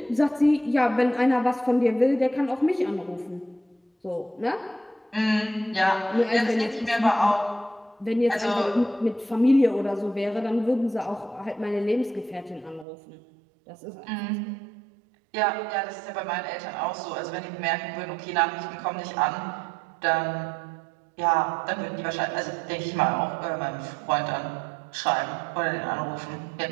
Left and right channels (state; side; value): drops out; left; at 12.9 s